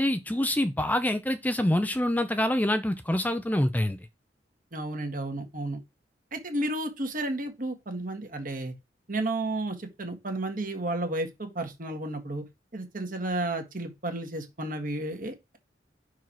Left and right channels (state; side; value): normal; both; correlation 0.72